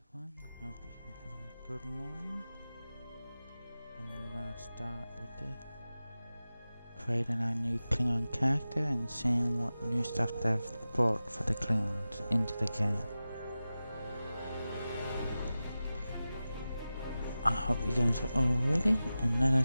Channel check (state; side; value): inverted; both; correlation -0.94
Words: everyone, hope you're having a good morning. And we're gonna start with creating our new Klingon character and seeing what new stuff they've brought for the Klingons into the game. I hope you guys are all ready and let